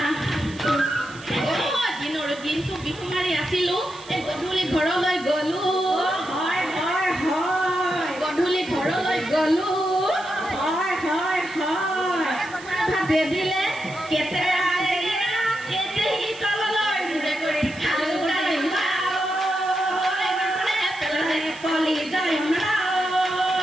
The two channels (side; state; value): right; noise; hiss, 19 dB below the sound